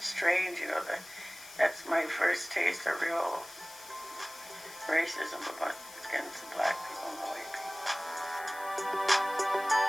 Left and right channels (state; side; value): noise; left; hiss, 17 dB below the sound